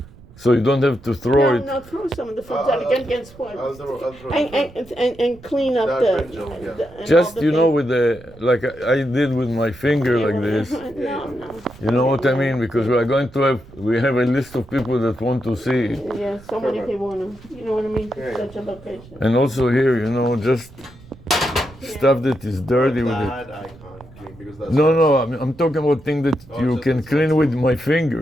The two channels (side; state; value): right; noise; rumble, 22 dB below the sound